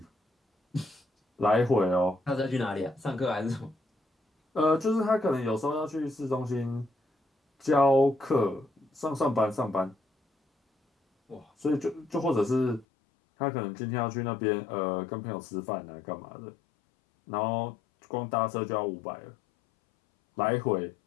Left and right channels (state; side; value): drops out; right; at 12.9 s